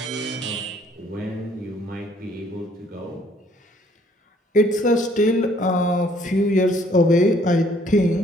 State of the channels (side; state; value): both; normal; correlation 0.62